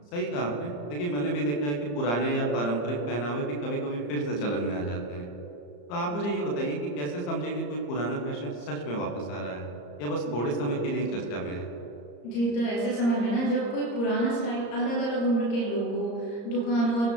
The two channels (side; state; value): right; late; 34 ms